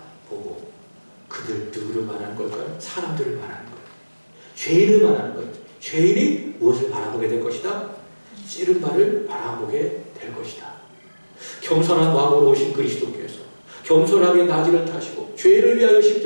그들 누구를 말하는 걸까요? 사람들을 말하는 거예요. 죄인을 말하는 거예요. 죄인이 무엇을 바라보게 될 것이다? 찌른 바를 바라보게 될 것이다. 겸손한 마음으로 오신 그리스도께서 겸손하게 나귀를 타시고 죄인을 위하여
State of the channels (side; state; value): both; inverted; correlation -1.00